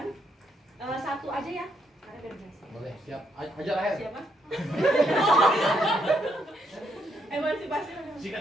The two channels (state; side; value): normal; both; correlation 0.75